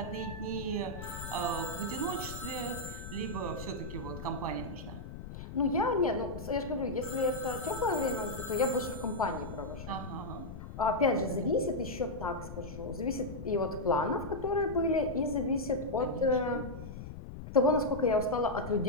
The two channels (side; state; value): left; noise; rumble, 10 dB below the sound